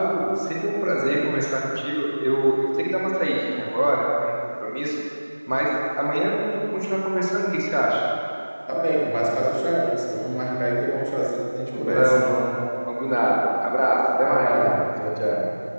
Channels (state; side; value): inverted; both; correlation -1.00